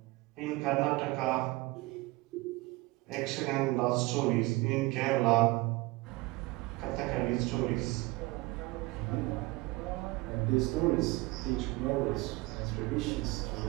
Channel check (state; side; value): quieter; left; 21.9 dB